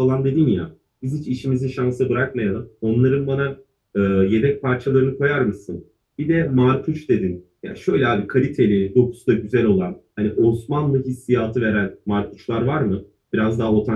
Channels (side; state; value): both; identical; correlation 1.00